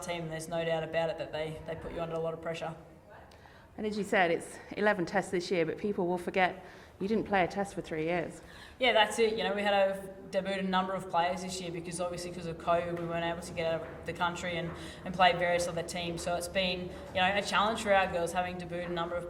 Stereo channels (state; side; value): identical; both; correlation 1.00